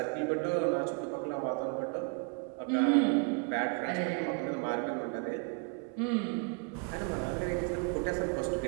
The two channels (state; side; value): quieter; left; 35.7 dB